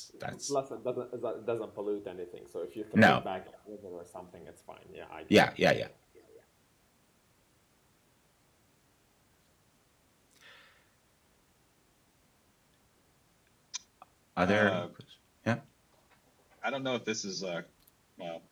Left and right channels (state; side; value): identical; both; correlation 1.00